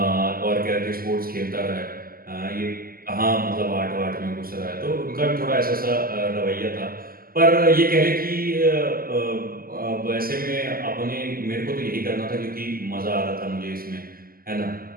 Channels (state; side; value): late; left; 0.42 ms